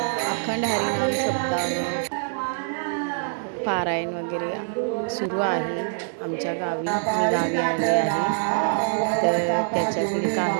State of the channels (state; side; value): silent; left; 62 dB below the other